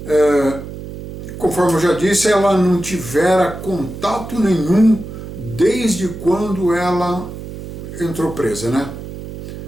Conforme eu já disse, ela não tivera contato nenhum desde quando ela entrou presa, né?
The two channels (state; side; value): noise; right; hum, 11 dB below the sound